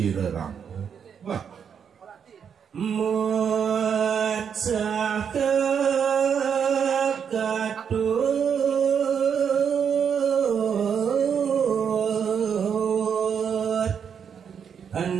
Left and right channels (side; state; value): left; quieter; 7.4 dB